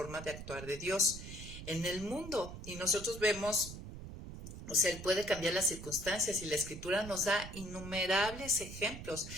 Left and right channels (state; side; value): noise; right; rumble, 11 dB below the sound